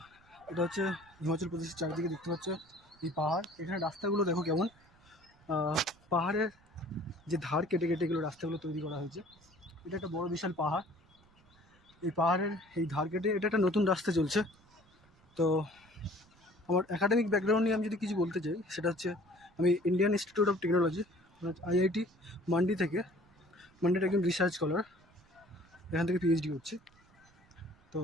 এটা হচ্ছে হিমাচল প্রদেশের চারিদিকে দেখতে পাচ্ছ এই পাহাড়। এখানে রাস্তাগুলো দেখো কেমন, পাহাড়ের যে ধার কেটে কেটে এগুলো রাস্তাগুলো তৈরি করা হয়েছে। এটা একটা বড় বিশাল পাহাড়। এই পাহাড়ের এই ধার কেটে এটা একটা নতুন রাস্তা চলছে। তো আমার একাডেমিক ব্যাকগ্রাউন্ড নিয়ে আমি যদি কিছু বলতে চাই, সেটা হচ্ছে আমি Indian institute of technology IIT মান্ডির একজন রিসার্চ স্কলার, এখান থেকে PhD করছি। তো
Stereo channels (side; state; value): right; noise; rumble, 30 dB below the sound